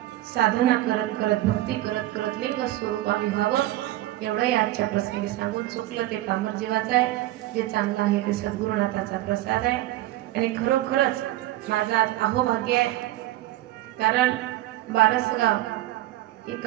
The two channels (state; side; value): quieter; left; 15.9 dB